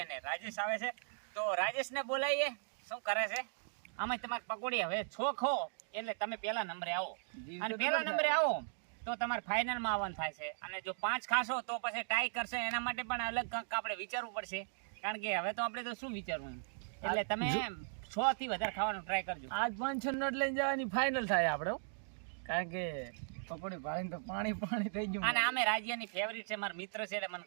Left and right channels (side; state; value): left; silent; digital silence